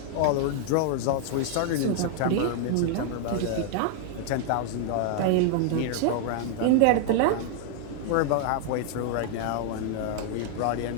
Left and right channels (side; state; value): both; different; correlation 0.00